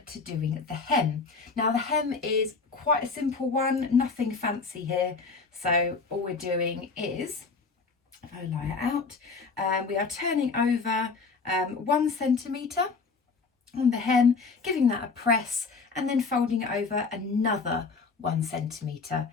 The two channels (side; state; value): right; quieter; 4.5 dB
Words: to doing the hem. Now the hem is quite a simple one, nothing fancy here. So all we're doing is, if I lie it out, we are turning over 1 centimetre on the hem, giving that a press, and then folding it over another 1 centimetre